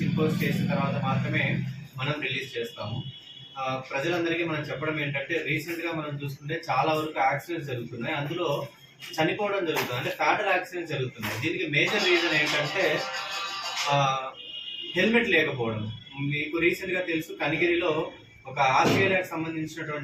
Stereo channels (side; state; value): both; identical; correlation 1.00